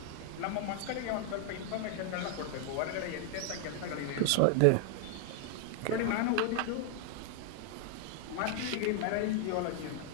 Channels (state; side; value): different; both; correlation 0.00